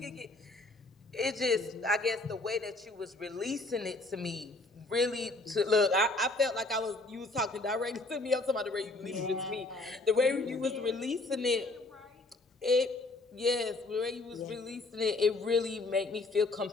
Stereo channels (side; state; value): right; quieter; 3.0 dB